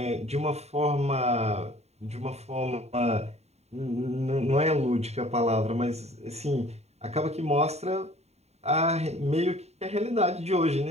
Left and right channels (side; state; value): left; late; 0.31 ms